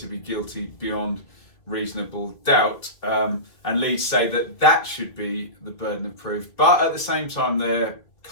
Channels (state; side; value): late; right; 3.1 ms